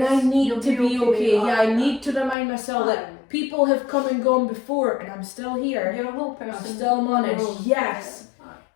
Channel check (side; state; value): right; drops out; at 2.4 s